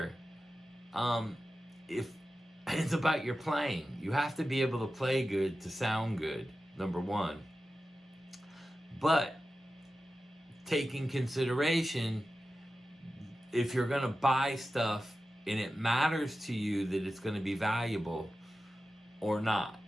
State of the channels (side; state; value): both; normal; correlation 0.93